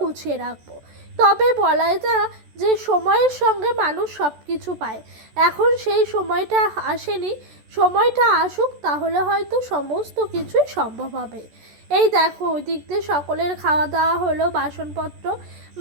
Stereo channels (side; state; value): left; late; 14 ms